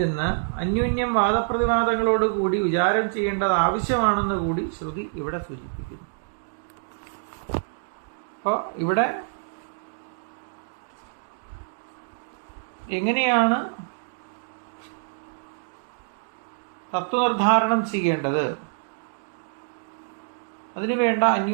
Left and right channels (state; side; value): silent; left; digital silence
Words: അന്യോന്യം വാദപ്രതിവാദങ്ങളോടുകൂടി വിചാരം ചെയ്യേണ്ടത് ആവശ്യമാണെന്ന് കൂടി ശ്രുതി ഇവിടെ സൂചിപ്പിക്കുന്നു. അപ്പോൾ ഇവിടെ എങ്ങനെയാണ് തത്വനിർദ്ധാരണം ചെയ്യേണ്ടത്, അതിനുവേണ്ട